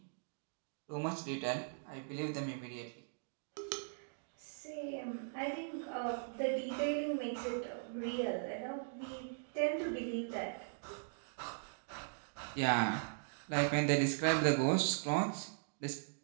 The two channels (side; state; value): left; silent; digital silence